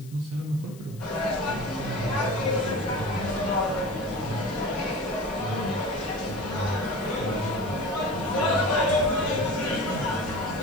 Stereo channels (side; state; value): left; noise; hiss, 23 dB below the sound